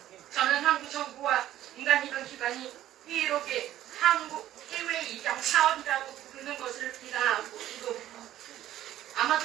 저는 한국 정부와 민간입양기관이 희애롭게 한국 해외 입양 사업이라고 부르는 것을 비난하고 이거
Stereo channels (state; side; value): quieter; left; 13.0 dB